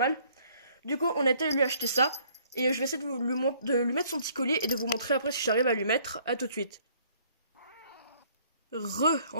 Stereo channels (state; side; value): inverted; both; correlation -0.61